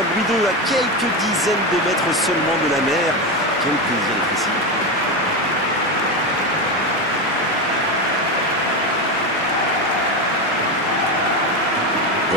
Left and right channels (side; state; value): both; normal; correlation 0.15